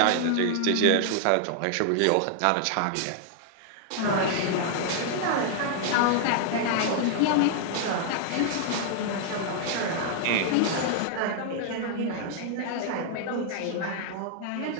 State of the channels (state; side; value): different; both; correlation 0.00